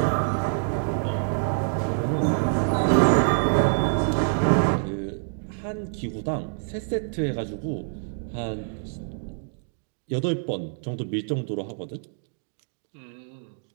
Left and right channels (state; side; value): silent; left; digital silence